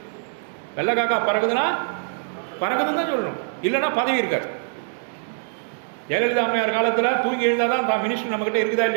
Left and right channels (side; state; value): left; silent; digital silence